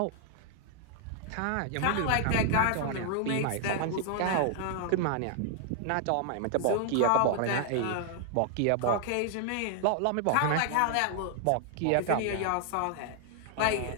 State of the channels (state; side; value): different; both; correlation 0.00